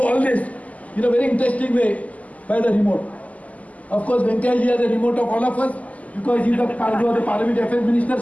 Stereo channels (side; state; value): right; late; 0.073 ms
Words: all this in a very interesting way by the remote. Of course, Venkayaji has a remote of all of us, because he was the Parliament Affairs Minister,